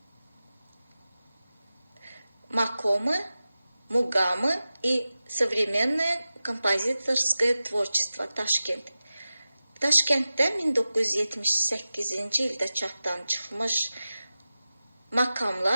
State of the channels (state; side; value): inverted; both; correlation -0.95